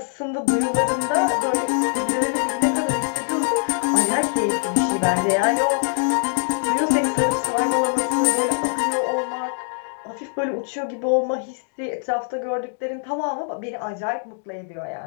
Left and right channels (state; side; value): silent; right; digital silence